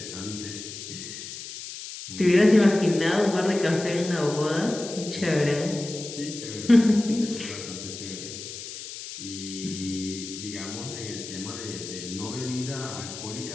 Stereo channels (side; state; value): left; noise; hiss, 10 dB below the sound